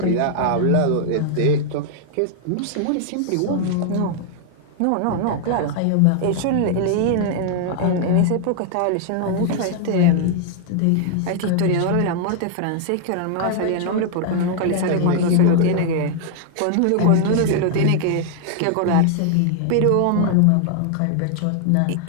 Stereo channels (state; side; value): different; both; correlation 0.00